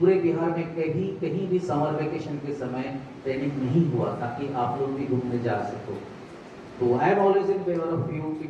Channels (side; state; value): both; identical; correlation 1.00